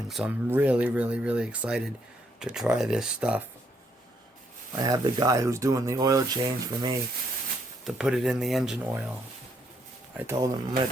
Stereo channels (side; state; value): both; normal; correlation 0.72